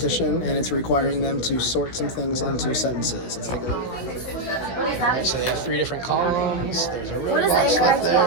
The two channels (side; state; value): right; late; 16 ms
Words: and it's requiring them to sort some things into sentences. Let's take a look. So they have 3 different columns. There's a What is the incorrect